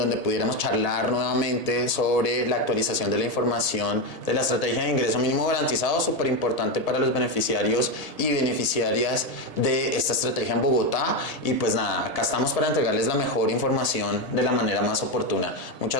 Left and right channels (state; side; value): late; right; 1.8 ms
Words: pudiéramos charlar nuevamente sobre la actualización de la información de la estrategia de ingreso mínimo garantizado, súper importante para los beneficiarios y beneficiarias de esta estrategia en Bogotá. Y pues nada, acá estamos para entregarles la mejor información de la manera más oportuna.